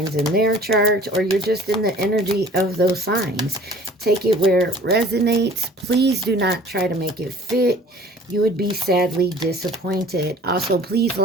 in their chart, or you're just in the energy of those signs. Take it where it resonates. Please do not try to make it fit. You would be sadly disappointed. Also, please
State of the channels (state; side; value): normal; both; correlation 0.49